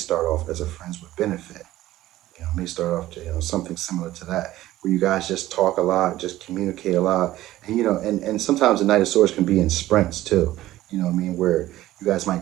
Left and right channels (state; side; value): quieter; left; 15.2 dB